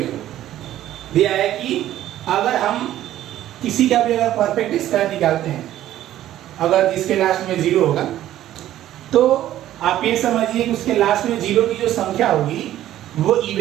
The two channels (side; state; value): left; quieter; 13.0 dB